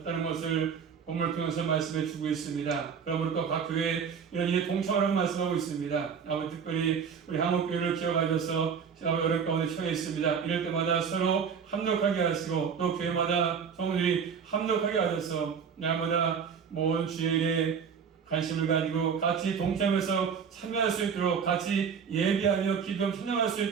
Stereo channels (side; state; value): left; quieter; 6.7 dB